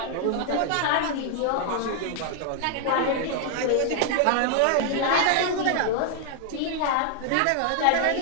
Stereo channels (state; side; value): different; both; correlation 0.00